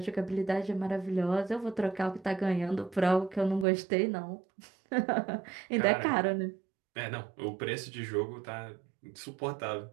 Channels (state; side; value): drops out; left; at 3.7 s